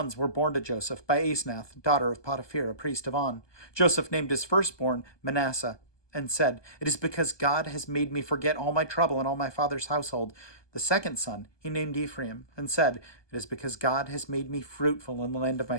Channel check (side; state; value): right; late; 1.2 ms